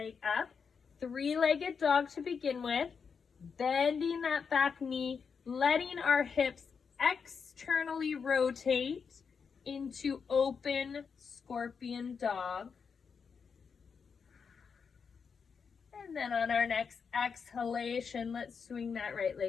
up, three-legged dog to begin with, bending that back knee, letting our hips externally rotate into open scorpion dog. And then on our next exhalation, let's swing that right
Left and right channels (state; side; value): quieter; right; 6.0 dB